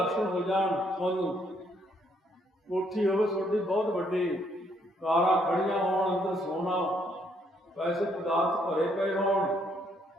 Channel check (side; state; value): both; normal; correlation 0.70